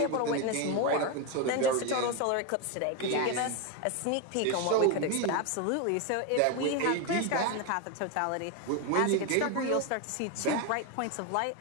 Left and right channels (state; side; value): different; both; correlation 0.02